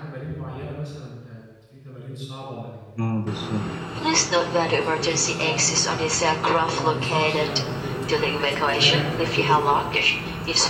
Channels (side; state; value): both; identical; correlation 1.00